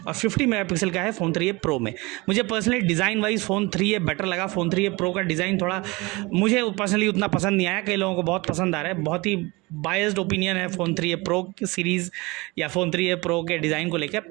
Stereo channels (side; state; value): left; quieter; 24.1 dB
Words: और 50 मेगापिक्सल का है फ़ोन 3A प्रो में। मुझे personally design wise phone 3A better लगा। फ़ोन 3A प्रो का डिज़ाइन थोड़ा मुझे पर्सनली उतना पसंद नहीं आया, कई लोगों को बहुत पसंद आ रहा है। बहुत ही बायस्ड ओपिनियन है फ़ोन 3A प्रो सीरीज़ या फ़ोन 3A प्रो के डिज़ाइन को लेकर,